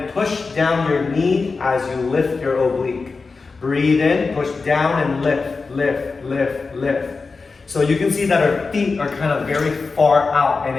push down your knee as you lift your oblique. Breathe in, push down, and lift, lift, lift, lift. So you can see that our feet are kind of very far out, and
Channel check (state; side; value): quieter; right; 4.3 dB